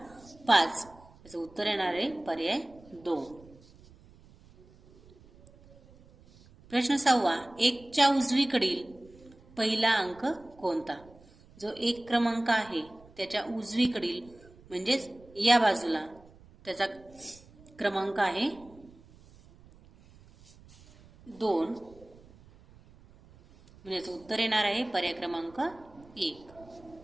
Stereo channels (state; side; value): noise; right; rumble, 25 dB below the sound